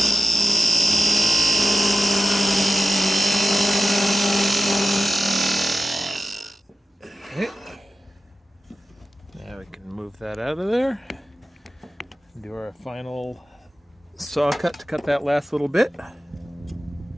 that out of there. Do our final saw cut to cut that last little bit.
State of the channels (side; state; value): both; normal; correlation 0.94